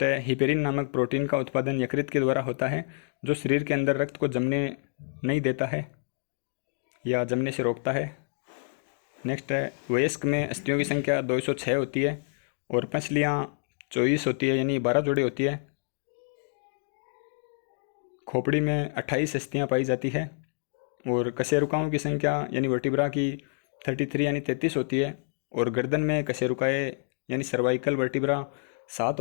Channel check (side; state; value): right; silent; digital silence